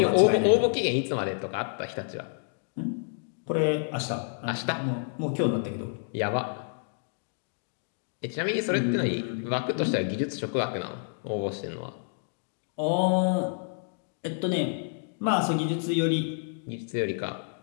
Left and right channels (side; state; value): right; silent; digital silence